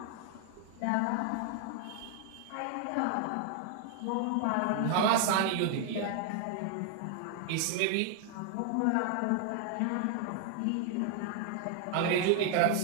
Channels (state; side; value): different; both; correlation 0.00